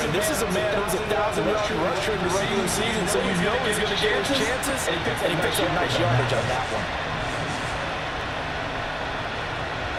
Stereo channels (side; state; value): both; identical; correlation 1.00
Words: this is a man who's a 1,000-yard rusher in the regular season, so you know he's going to get his chances, and he picks up nice yardage on that one.